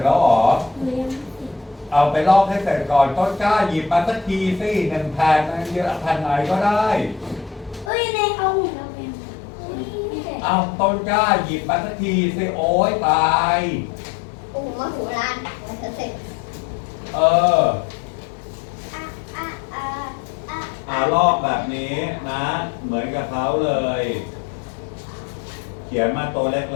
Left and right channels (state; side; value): drops out; right; at 7.9 s